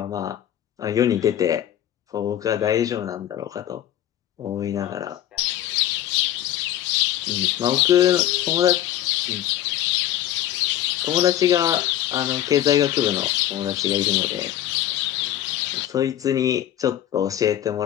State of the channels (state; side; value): quieter; right; 12.2 dB